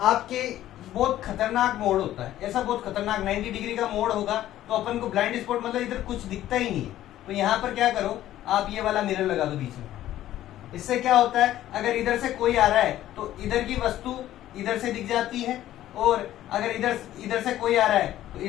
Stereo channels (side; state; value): right; quieter; 13.3 dB